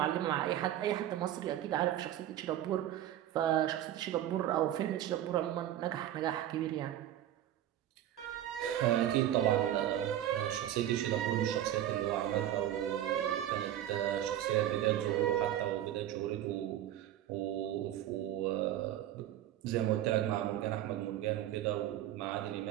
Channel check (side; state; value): left; quieter; 12.2 dB